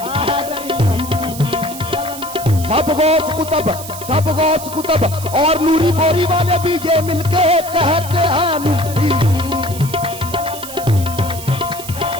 सब गौस कुतब और नूरी बोरी वाले भी ये मिलके कहते हैं नूरी।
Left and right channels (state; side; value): noise; right; hiss, 12 dB below the sound